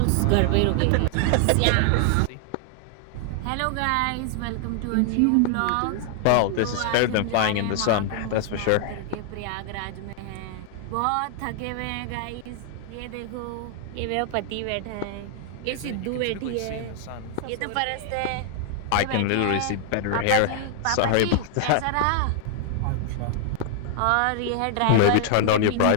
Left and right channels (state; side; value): different; both; correlation 0.00